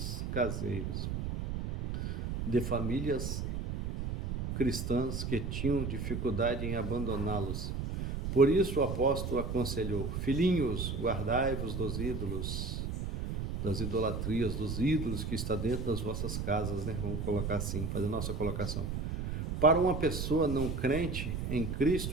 de famílias cristãs que tinham dificuldade em abandoná-los. Por isso o apóstolo aconselhou, filhinhos, guardai-vos dos ídolos, das idolatrias, dos ídolos que está dentro das vossas casas, né? Vamos colocar assim, fazer a nossa colocação. Para uma pessoa não crente em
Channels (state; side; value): noise; right; rumble, 3 dB below the sound